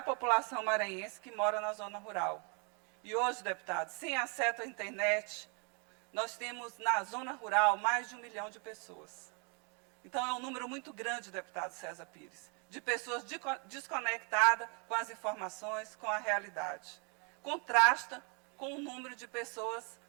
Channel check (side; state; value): left; quieter; 36.1 dB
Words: população maranhense que mora na zona rural. E hoje, deputados, sem acesso à internet, nós temos na zona rural mais de 1 milhão de pessoas. Então, é um número muito grande, deputado César Pires, de pessoas desconectadas com as informações, com a realidade. Contrasta com o número de pessoas